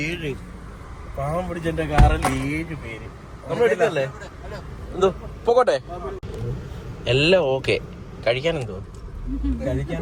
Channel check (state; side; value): identical; both; correlation 1.00